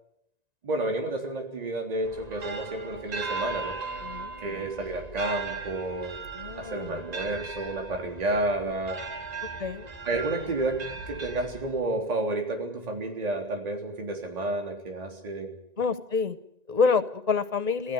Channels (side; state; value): left; late; 1.9 ms